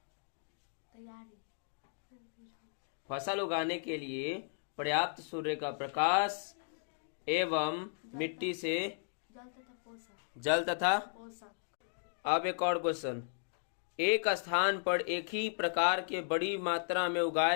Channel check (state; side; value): silent; right; digital silence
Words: तैयारी। फसल उगाने के लिए पर्याप्त सूर्य का प्रकाश एवं मिट्टी से जल तथा पोषक। अब एक और क्वेश्चन। एक स्थान पर एक ही प्रकार के बड़ी मात्रा में